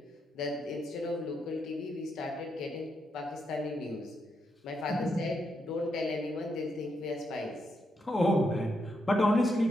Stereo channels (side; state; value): both; normal; correlation 0.80